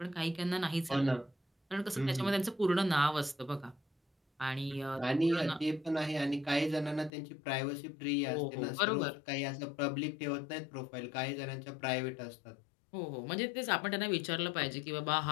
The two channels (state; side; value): drops out; right; at 7.1 s